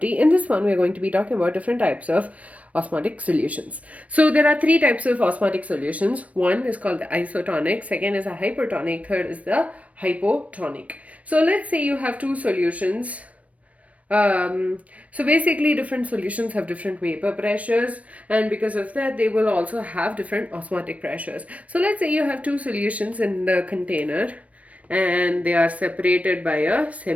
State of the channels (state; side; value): late; left; 0.066 ms